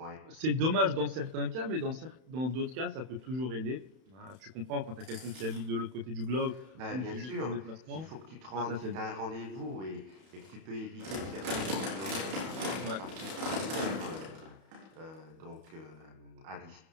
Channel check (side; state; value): left; late; 31 ms